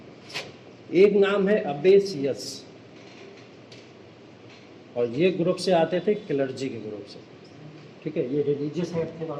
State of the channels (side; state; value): both; identical; correlation 1.00